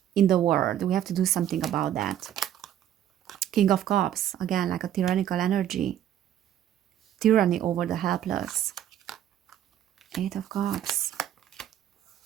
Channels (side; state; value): left; quieter; 11.0 dB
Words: in the world. We have to do something about that. King of Cups, again, like a tyrannical energy. Tyranny over the helpless. Eight of Cups.